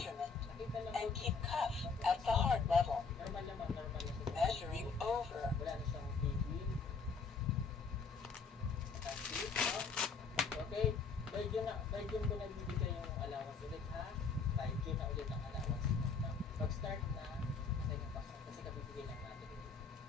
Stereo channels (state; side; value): quieter; right; 4.9 dB